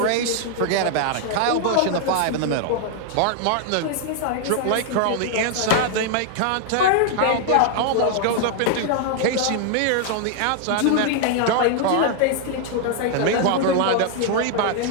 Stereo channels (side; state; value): both; different; correlation 0.00